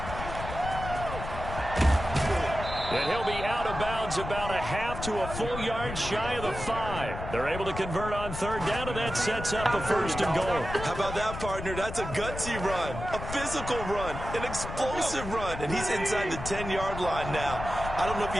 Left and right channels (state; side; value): noise; left; rumble, 8 dB below the sound